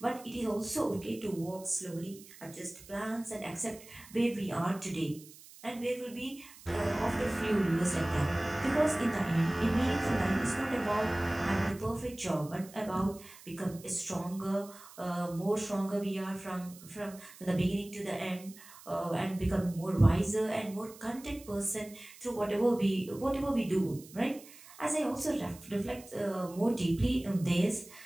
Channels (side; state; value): right; noise; hiss, 20 dB below the sound